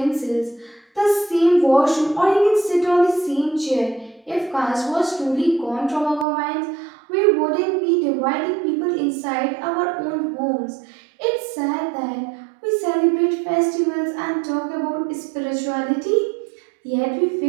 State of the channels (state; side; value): drops out; left; at 6.2 s